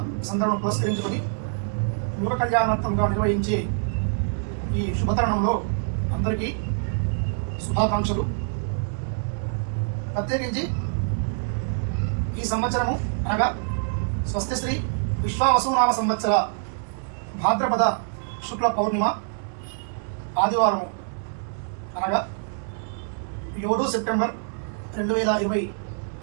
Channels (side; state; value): left; silent; digital silence